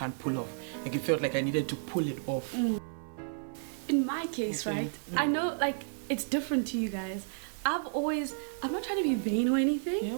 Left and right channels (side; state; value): left; silent; 56 dB below the other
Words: pull off. Like, it felt like I needed to pull it off. In my case, right, I know, like, it's different to you guys. I'm not trying to be vain or